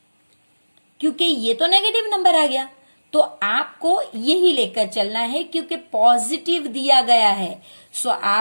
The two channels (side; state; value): both; inverted; correlation -1.00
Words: क्योंकि ये तो नेगेटिव नंबर आ गया, तो आपको यही लेकर चलना है क्योंकि पॉजिटिव दिया गया है। सो